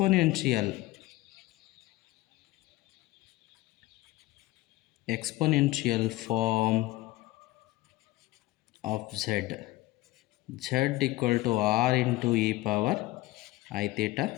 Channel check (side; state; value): right; quieter; 18.7 dB